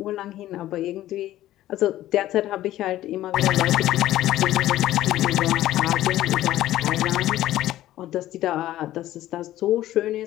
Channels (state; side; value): quieter; right; 14.3 dB